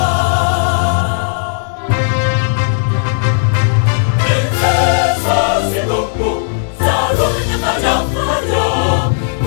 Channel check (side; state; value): right; silent; digital silence